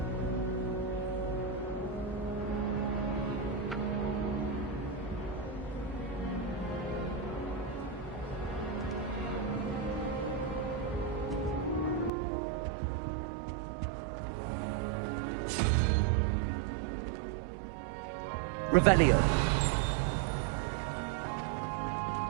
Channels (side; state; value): left; drops out; at 12.1 s